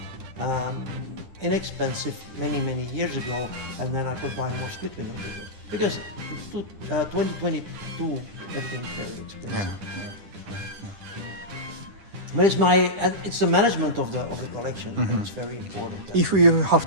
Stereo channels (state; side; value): late; left; 10 ms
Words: inexpensive many years ago, and then I could buy more split window vehicles because 2022 everything's very expensive. yeah. But it's the management of the collection. It's very important. If you have